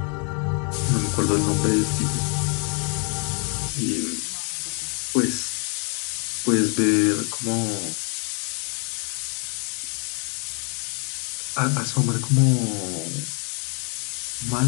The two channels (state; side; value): quieter; right; 38.0 dB